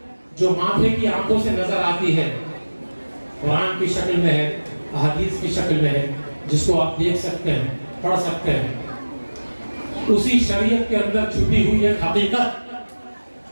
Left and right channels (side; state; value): both; inverted; correlation -1.00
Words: جو ماتھے کی آنکھوں سے نظر آتی ہے، قرآن کی شکل میں ہے، احادیث کی شکل میں ہے، جس کو آپ دیکھ سکتے ہیں، پڑھ سکتے ہیں، اسی شریعت کے اندر چھپی ہوئی ایک حقیقت